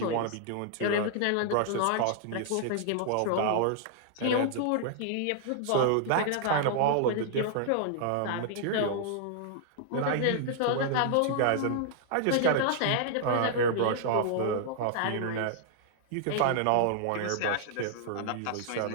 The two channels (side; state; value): both; different; correlation -0.01